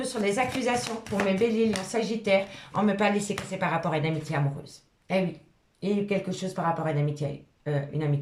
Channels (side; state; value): both; identical; correlation 1.00